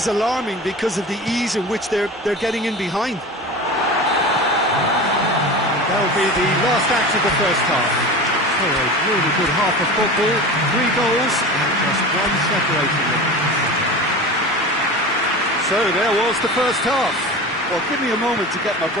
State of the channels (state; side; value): normal; both; correlation 0.32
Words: alarming because of the ease in which they're getting in behind. That'll be the last act of the first half. So a really good half of football, 3 goals and just one separating them. So there was the first half. Well, give me a moment to get my